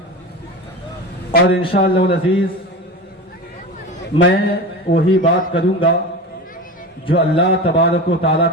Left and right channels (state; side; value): normal; both; correlation 0.28